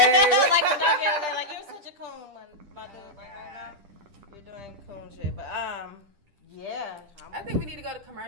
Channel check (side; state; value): left; late; 10 ms